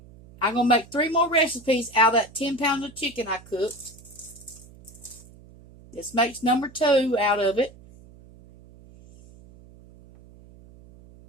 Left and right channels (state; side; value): noise; right; hum, 22 dB below the sound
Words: going to make 3 more recipes out of that 10 pounds of chicken I cooked. This makes number 2 out of it.